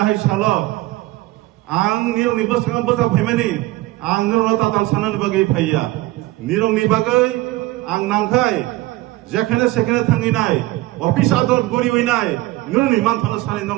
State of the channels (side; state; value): left; quieter; 18.5 dB